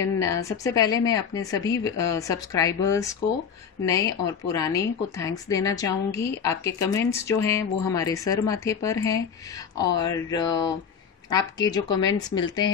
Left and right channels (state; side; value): quieter; right; 6.9 dB